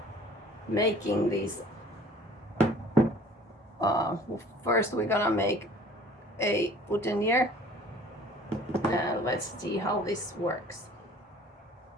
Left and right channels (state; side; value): normal; both; correlation 0.50